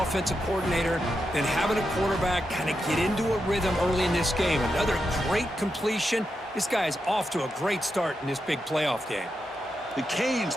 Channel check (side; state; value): both; normal; correlation 0.86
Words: coordinator than having a quarterback kind of get into a rhythm early in this game. Another great completion. This guy is off to a great start in this big playoff game. The Canes